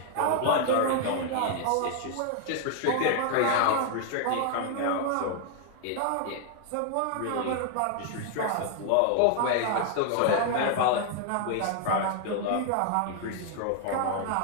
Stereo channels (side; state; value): both; different; correlation 0.00